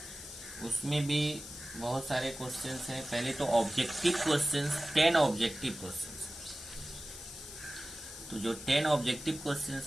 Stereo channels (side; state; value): left; noise; hiss, 12 dB below the sound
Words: उसमें भी बहुत सारे क्वेश्चंस हैं। पहले तो ऑब्जेक्टिव क्वेश्चंस, 10 ऑब्जेक्टिव क्वेश्चंस। तो जो 10 ऑब्जेक्टिव क्वेश्चंस